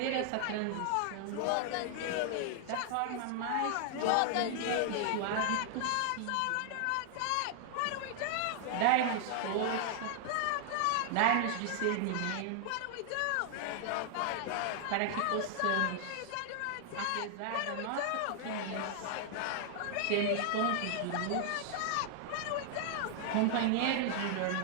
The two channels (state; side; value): different; both; correlation 0.00